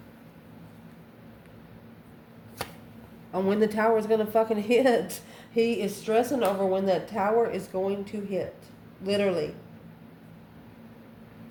On when the tower is going to fucking hit. He is stressing over when that tower is going to hit. Literally.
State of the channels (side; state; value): both; identical; correlation 1.00